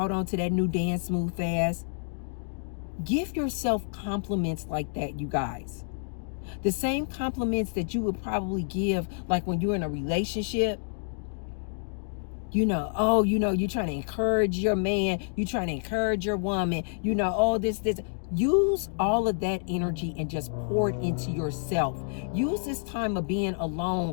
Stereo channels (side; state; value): right; silent; digital silence